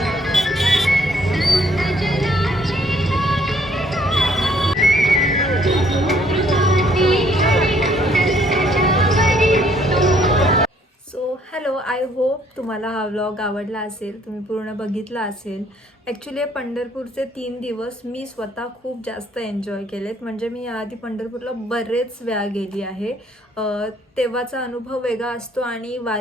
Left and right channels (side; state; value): both; normal; correlation 0.64